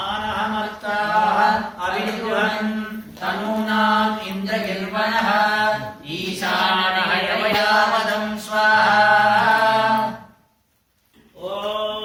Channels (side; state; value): both; identical; correlation 1.00